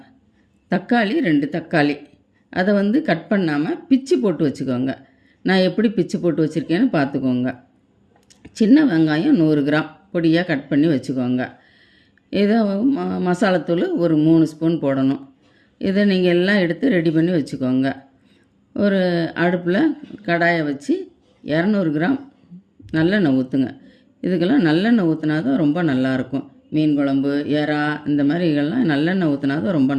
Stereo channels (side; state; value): both; identical; correlation 1.00